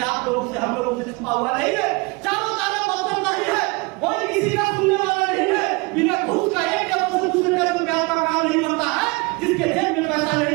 आप लोगों से, हम लोगों से छुपा हुआ नहीं है। चारों तरफ पसंद नहीं है, कोई किसी का सुनने वाला नहीं है। बिना घूस का एक जगह से दूसरे जगह प्यार का काम नहीं करता है। जिसके जेब में पैसा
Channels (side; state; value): left; quieter; 26.6 dB